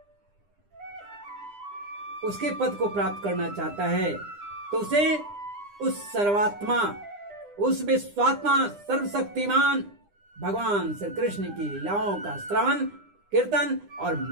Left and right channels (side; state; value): left; late; 9.9 ms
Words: उसके पद को प्राप्त करना चाहता है, तो उसे उस सर्वात्मा, उस विश्वात्मा, सर्वशक्तिमान भगवान श्री कृष्ण की लीलाओं का श्रवण, कीर्तन और